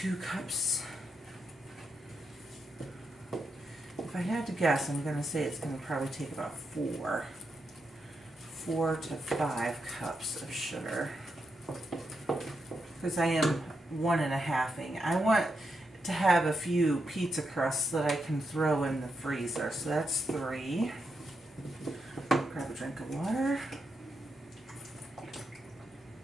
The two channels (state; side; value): normal; both; correlation 0.84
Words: cups. If I had to guess, I'm going to say it's going to probably take about 4 to 5 cups of sugar, because I am 1.5ing. I want to have a few pizza crusts that I can throw in the freezer. So that's 3. Grab a drink of water.